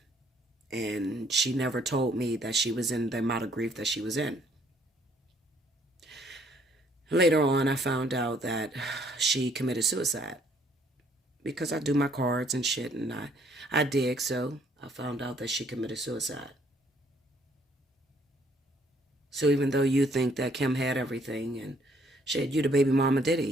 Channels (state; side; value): normal; both; correlation 0.64